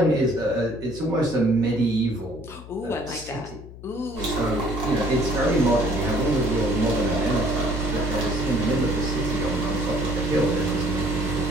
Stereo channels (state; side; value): noise; left; hum, 16 dB below the sound